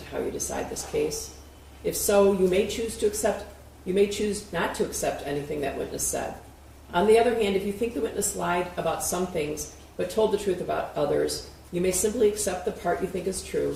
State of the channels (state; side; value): identical; both; correlation 1.00